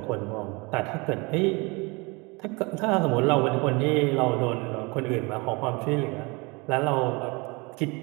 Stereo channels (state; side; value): quieter; left; 27.4 dB